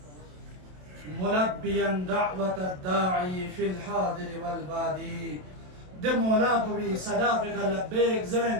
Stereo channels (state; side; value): late; left; 27 ms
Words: ملبيا دعوة الداعي في الحاضر والبادي ده مولا بي صداقك لبيك